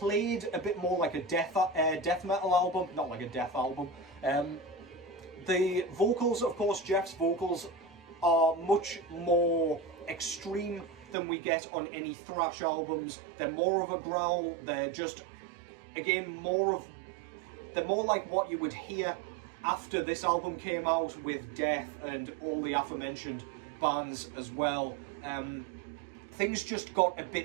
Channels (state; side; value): drops out; left; at 11.2 s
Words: a bit more like a death metal album, not like a death album. The vocals, of course, Jeff's vocals are much more extreme than we get on any thrash albums. They're more of a growl. They're just, again, they're more like what you would hear after this album came out with Death and all the aforementioned bands as well. Things just got a